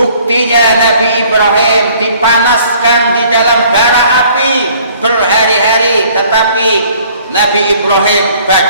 Nabi Ibrahim dipanaskan di dalam bara api berhari-hari, tetapi Nabi Ibrahim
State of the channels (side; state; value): both; inverted; correlation -0.57